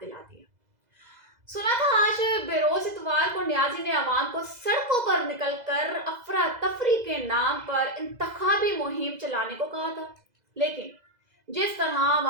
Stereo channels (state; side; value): late; left; 2.0 ms